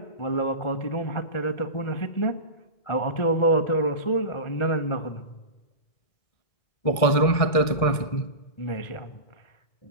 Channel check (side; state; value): right; late; 1.6 ms